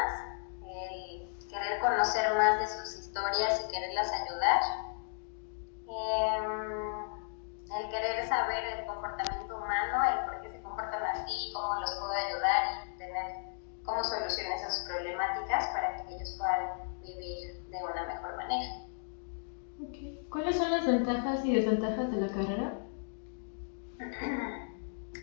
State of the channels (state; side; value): silent; right; digital silence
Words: el querer conocer más de sus historias y quererlas ayudar, el querer saber el comportamiento humano, el por qué se comportan así, cómo los puedo ayudar y tener cómo solucionar esas problemáticas para que ellos puedan vivir de una mejor manera. Okay. ¿Cuáles son las ventajas y desventajas de la carrera?